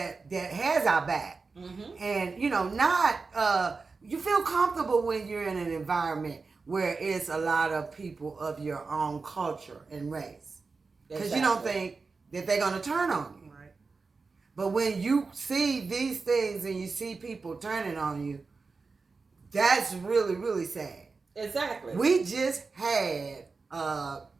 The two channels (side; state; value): left; quieter; 4.3 dB